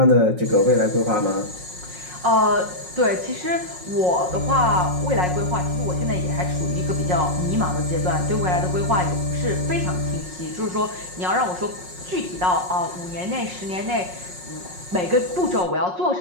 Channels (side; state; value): left; late; 5.5 ms